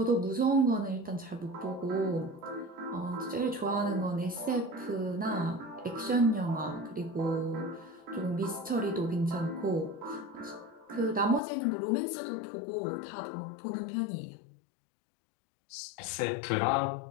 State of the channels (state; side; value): drops out; right; at 11.4 s